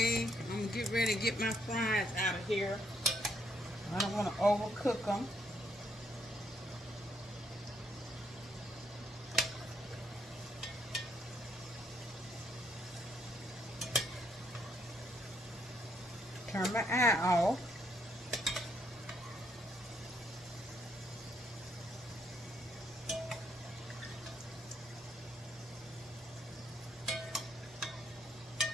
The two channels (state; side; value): normal; both; correlation 0.72